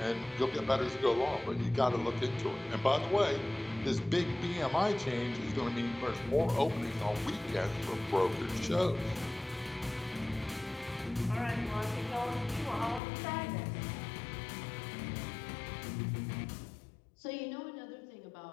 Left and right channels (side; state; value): right; drops out; at 13.0 s